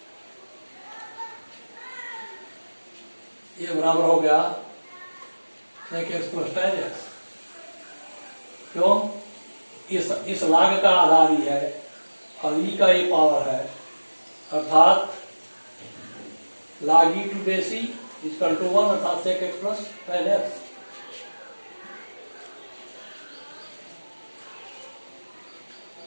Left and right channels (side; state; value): both; inverted; correlation -1.00